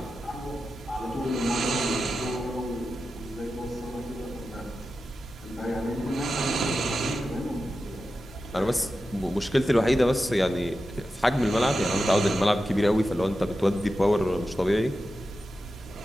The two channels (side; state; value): both; normal; correlation 0.91